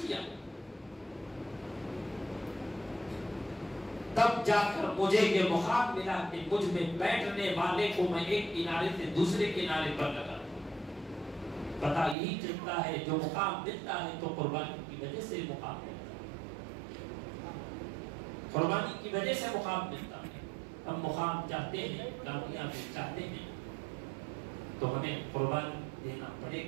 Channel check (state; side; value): drops out; left; at 12.2 s